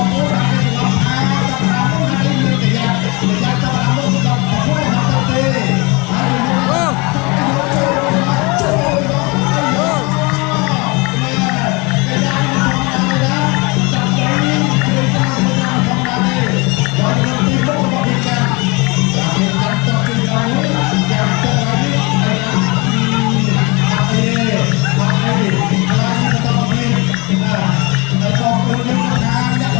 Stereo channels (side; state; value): right; quieter; 27.3 dB